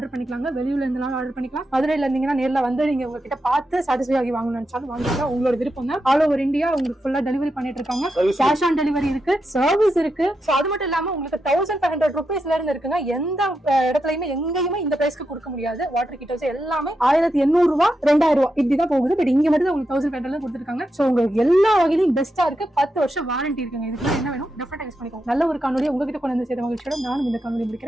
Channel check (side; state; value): both; normal; correlation 0.86